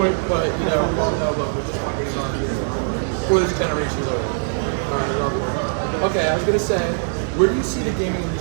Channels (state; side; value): silent; left; digital silence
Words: but you know, we all know. But we just want games on before this generation is over. All right, I love it. Okay, I was gonna say, where do you see the gaming